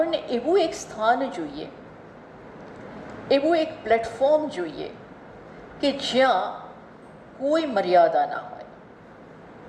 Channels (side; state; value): both; identical; correlation 1.00